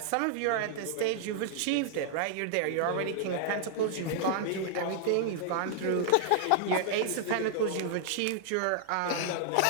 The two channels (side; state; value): both; different; correlation -0.01